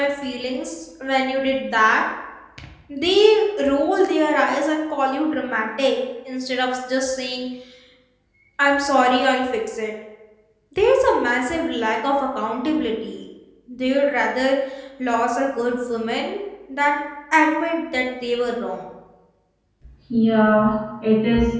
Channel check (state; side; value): identical; both; correlation 1.00